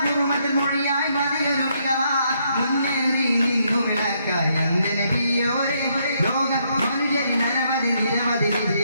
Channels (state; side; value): inverted; both; correlation -0.74